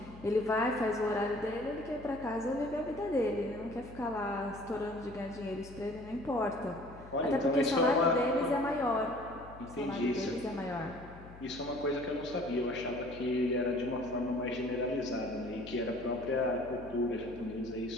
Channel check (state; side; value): noise; left; hum, 17 dB below the sound